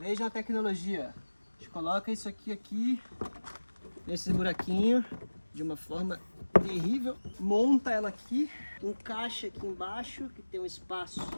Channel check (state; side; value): inverted; both; correlation -1.00